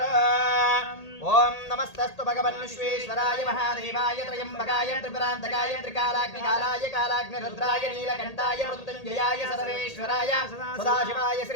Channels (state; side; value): late; right; 1.8 ms